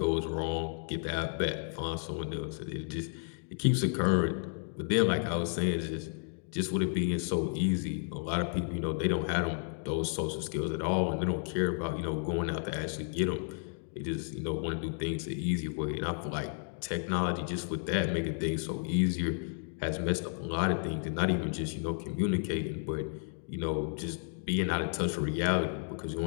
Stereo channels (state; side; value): silent; right; 56 dB below the other